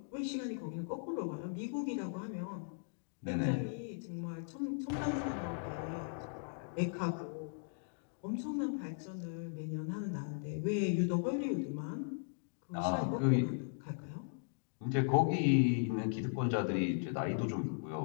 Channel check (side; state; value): right; silent; digital silence